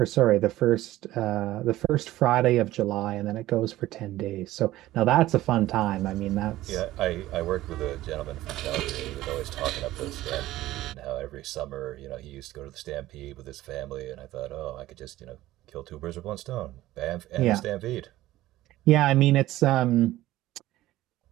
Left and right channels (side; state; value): left; quieter; 15.8 dB